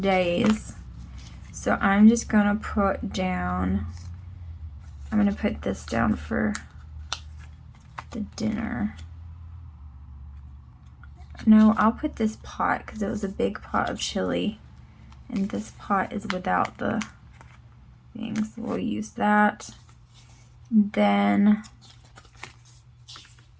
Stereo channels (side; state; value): both; identical; correlation 1.00